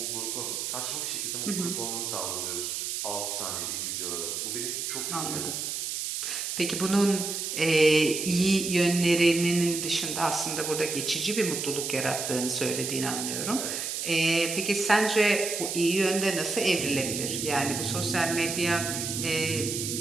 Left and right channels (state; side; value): noise; right; hiss, 3 dB below the sound